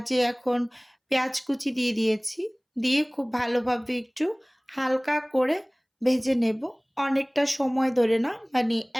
এখন পেঁয়াজ কুচি দিয়ে দিয়েছি। দিয়ে খুব ভালোভাবে একটু হালকা করে ভেজে নেব। অনেকটা সময় ধরে না, মানে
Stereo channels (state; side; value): identical; both; correlation 1.00